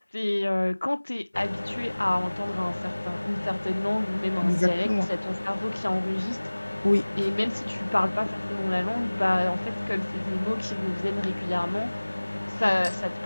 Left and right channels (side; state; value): both; inverted; correlation -1.00